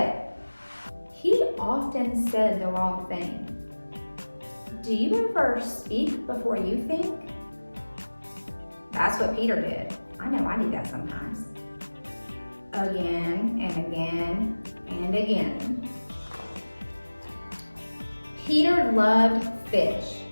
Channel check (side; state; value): both; inverted; correlation -1.00